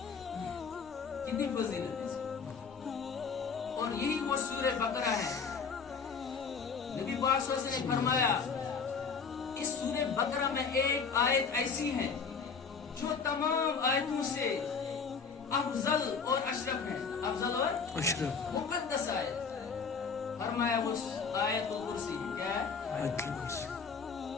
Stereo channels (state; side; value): quieter; right; 5.6 dB